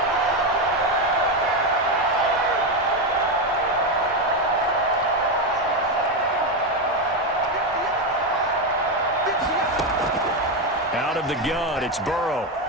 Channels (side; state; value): both; normal; correlation 0.10